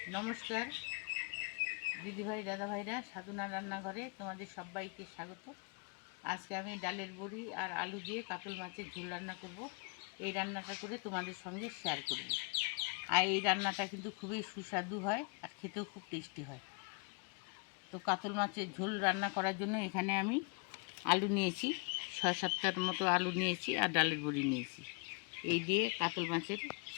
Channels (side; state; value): right; quieter; 34.6 dB